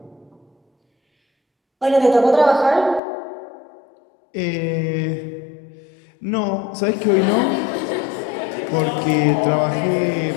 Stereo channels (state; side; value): drops out; right; at 3.0 s